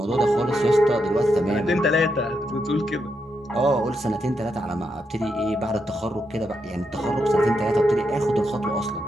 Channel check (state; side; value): normal; both; correlation 0.83